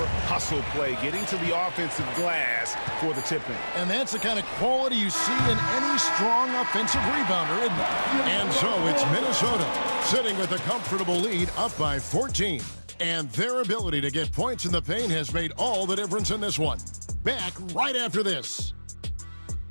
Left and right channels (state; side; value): inverted; both; correlation -1.00